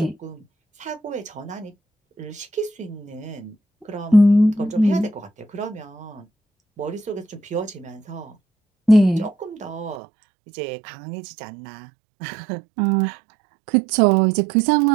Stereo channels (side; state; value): left; drops out; at 10.0 s